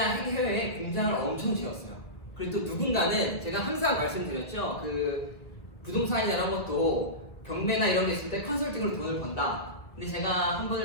해외에 공장을 엄청 지었어요. 그리고 또 누군가는 제가 항상 말씀드렸죠. 그 부동산이나 이런 것도 경매나 이런 게 있을 때 컨설팅으로 돈을 번다. 근데 제가 한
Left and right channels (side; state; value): right; late; 1.7 ms